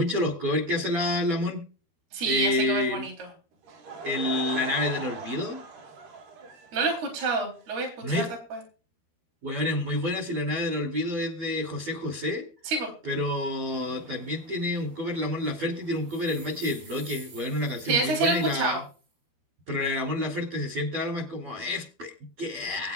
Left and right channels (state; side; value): late; left; 13 ms